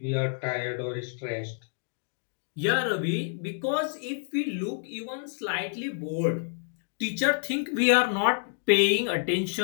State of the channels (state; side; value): silent; right; digital silence